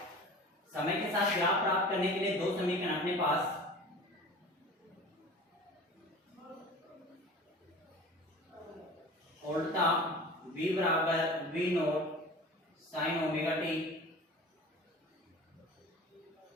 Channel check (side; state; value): both; normal; correlation 0.39